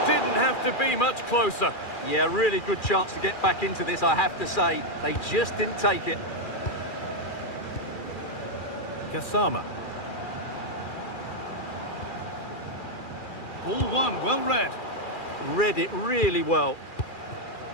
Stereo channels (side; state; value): right; late; 2.4 ms